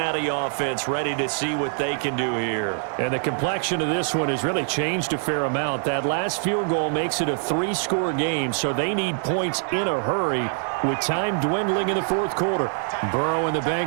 offense ready to see what they can do here. And the complexion of this one has really changed a fair amount. That last field goal makes it a 3-score game, so they need points in a hurry with time dwindling in the 4th quarter. Burrow and the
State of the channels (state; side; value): silent; left; 58 dB below the other